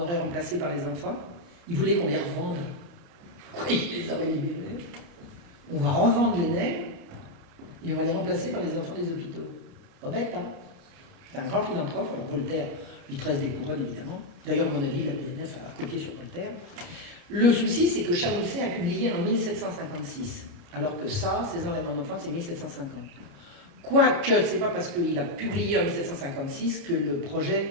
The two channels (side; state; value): left; late; 29 ms